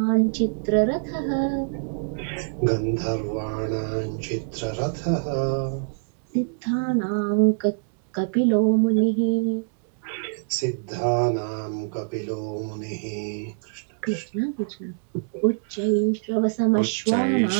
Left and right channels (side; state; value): left; silent; digital silence